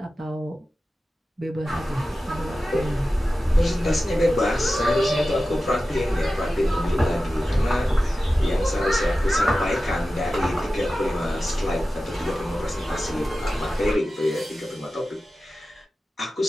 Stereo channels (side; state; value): both; normal; correlation 0.94